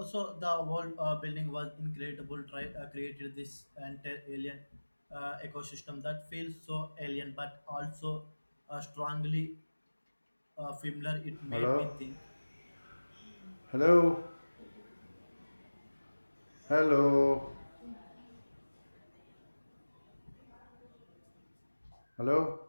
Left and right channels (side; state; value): both; inverted; correlation -1.00